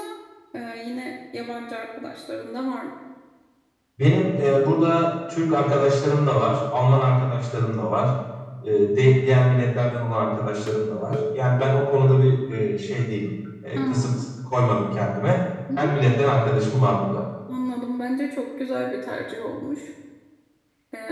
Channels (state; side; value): identical; both; correlation 1.00